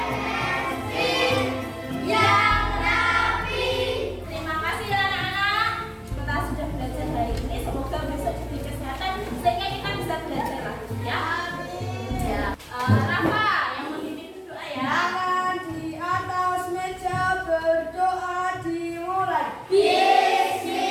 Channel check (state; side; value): identical; both; correlation 1.00